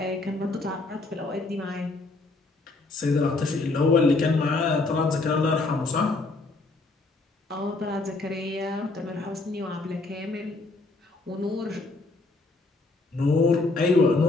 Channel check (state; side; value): quieter; right; 3.4 dB